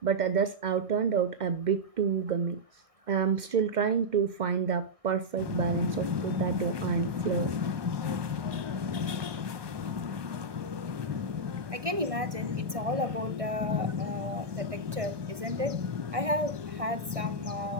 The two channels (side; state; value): left; late; 1.6 ms